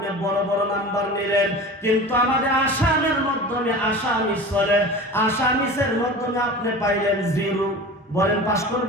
বড় বড় নাম্বার নিলেন। কিন্তু আমাদের আসামের মাধ্যমে আসামিস চলে, আসামিসের মাধ্যমে আপনি পাইলেন 0। বলেন পাস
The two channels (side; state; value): both; normal; correlation 0.35